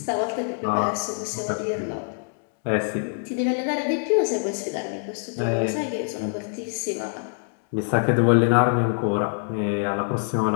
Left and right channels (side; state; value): right; silent; 56 dB below the other